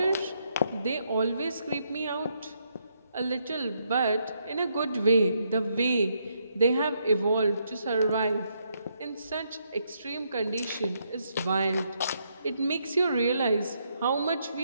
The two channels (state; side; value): inverted; both; correlation -0.77